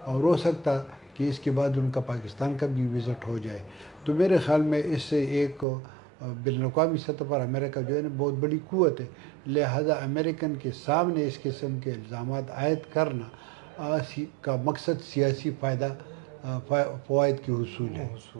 اور ہو سکتا کہ اس کے بعد ان کا پاکستان کا بھی وزٹ ہو جائے. تو میرے خیال میں اس سے ایک بین الاقوامی سطح پر امریکہ جو ہے نا بہت بڑی قوت ہے. لہذا امریکن کے سامنے اس قسم کے الزامات عائد کرنا کا مقصد سیاسی فوائد کی حصول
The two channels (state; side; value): drops out; left; at 5.7 s